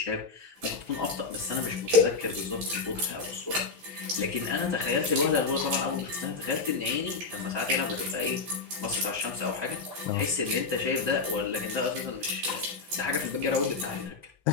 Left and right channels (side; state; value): right; quieter; 4.3 dB